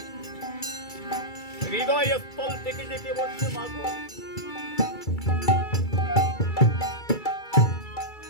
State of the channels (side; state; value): right; late; 2.3 ms